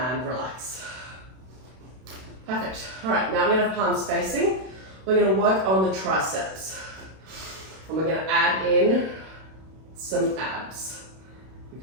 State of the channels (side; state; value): left; late; 32 ms